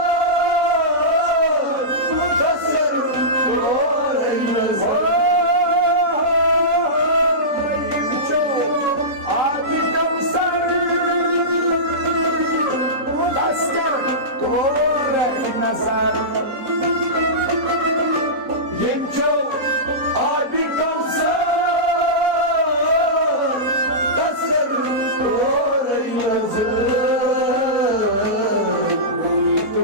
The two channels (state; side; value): late; left; 4.1 ms